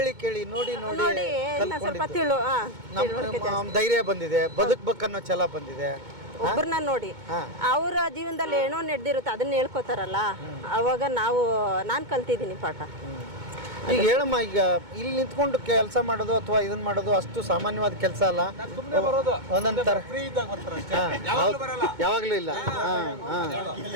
ನೋಡಿ ಇನ್ನ ಸ್ವಲ್ಪ ಧೈರ್ಯ ಬಂದಿದೆ, ಬದುಕ್ಬೇಕನ್ನೋ ಛಲ ಬಂದಿದೆ. ಒಬ್ಬರನ್ನ ನೋಡಿ ಅವರ ಜೀವನದಲ್ಲಿ ಏನೋ ನಡೆದಿರುತ್ತೆ ಅದನ್ನ ಹೇಳ್ಕೊತಾರಲ್ಲ, ಅವಾಗ ನಾನು ಕಲ್ತಿದ್ದೀನಿ ಪಾಠ. ಈಗ ಹೇಳಮ್ಮ, ಈಗ ಇಲ್ಲಿ ನಿಂತ್ಕೊಂಡು ಕೆಲಸ ಮಾಡೋದು ಅಥವಾ ಇದನ್ನ ಮಾಡೋದು ಅಷ್ಟು ಸಾಮಾನ್ಯವಾದ ಕೆಲಸ ಅಲ್ಲ. ಒಂದೊಂದರ ಯಾವಾಗ್ಲೂ ಇಲ್ಲ.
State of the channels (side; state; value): left; late; 2.2 ms